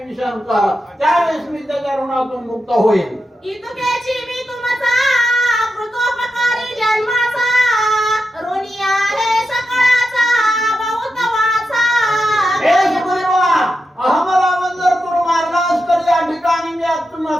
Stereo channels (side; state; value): both; normal; correlation 0.88